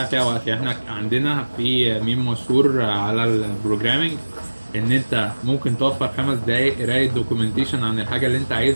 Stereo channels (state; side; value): inverted; both; correlation -1.00